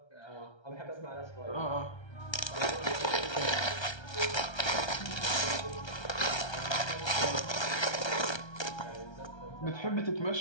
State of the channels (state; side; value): late; right; 1.3 ms